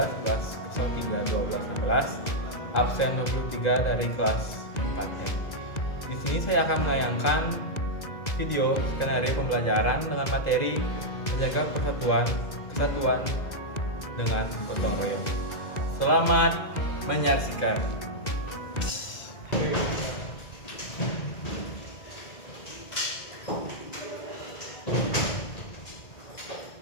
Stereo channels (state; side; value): late; right; 2.0 ms